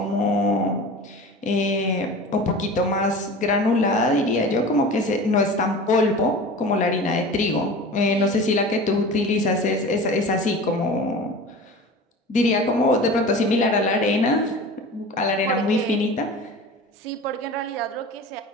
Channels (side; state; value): both; normal; correlation 0.36